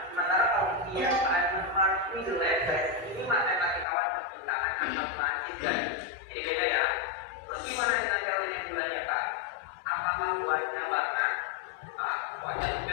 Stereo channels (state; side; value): drops out; right; at 3.9 s